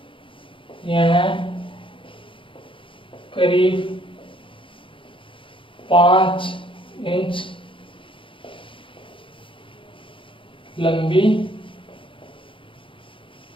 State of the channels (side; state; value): right; late; 0.25 ms